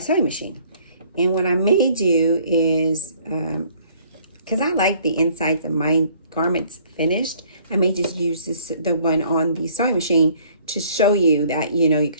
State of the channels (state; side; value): inverted; both; correlation -0.59